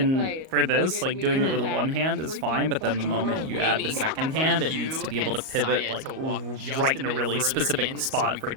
for this, like doing it with one hand is fine, but then the moment you add the second hand, it needs to be able to pivot like right in a really specific spot for it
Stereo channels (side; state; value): left; late; 38 ms